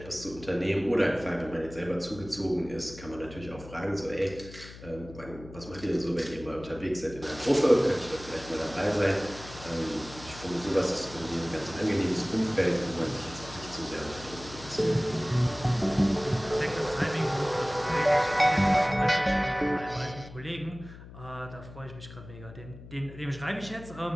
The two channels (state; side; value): noise; left; hum, 16 dB below the sound